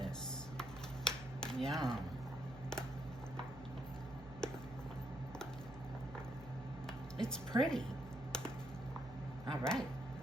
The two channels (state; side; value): noise; right; hum, 14 dB below the sound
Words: Yum. It's pretty. All right.